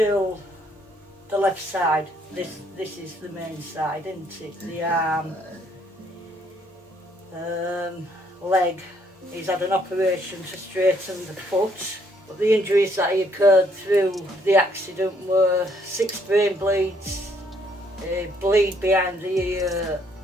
The left side. This is the main side, isn't it? The arm, leg. He's had an operation to straighten the foot. But the injuries that he occurred through the accident were 6 brain bleeds, a bleed behind the ear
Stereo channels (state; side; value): normal; both; correlation 0.68